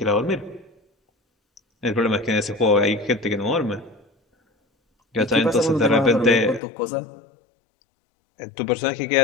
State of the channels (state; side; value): drops out; right; at 6.6 s